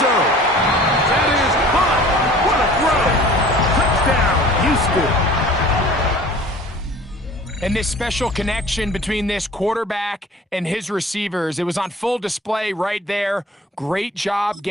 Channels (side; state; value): both; normal; correlation 0.46